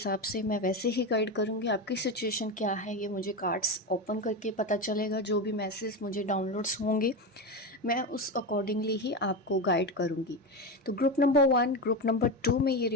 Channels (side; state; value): both; normal; correlation 0.17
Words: से, मैं वैसे ही गाइड करूँगी। आपकी सिचुएशन क्या है ये मुझे कार्ड्स ओपन करके पता चलेगा। जो भी मैसेज मुझे डाउनलोड्स होंगे मैं उस अकॉर्डिंगली ही आपको गाइड करूँगी। तो ग्रुप नंबर 1, ग्रुप नंबर 2 में ये